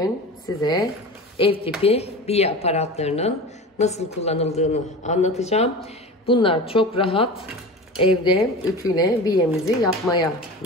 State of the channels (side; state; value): both; normal; correlation 0.32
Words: size ev tipi biye aparatlarının nasıl kullanıldığını anlatacağım. Bunlar çok rahat evde ütüyle biyemizi yapmaya